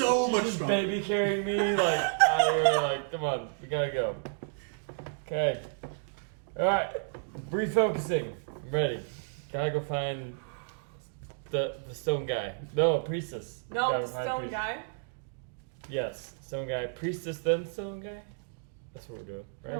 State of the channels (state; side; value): silent; left; digital silence